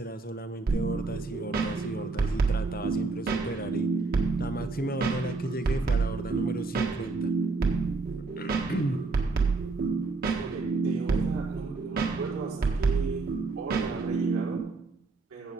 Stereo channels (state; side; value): quieter; left; 3.8 dB